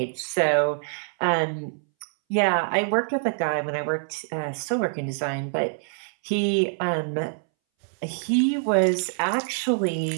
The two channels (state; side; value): silent; left; 62 dB below the other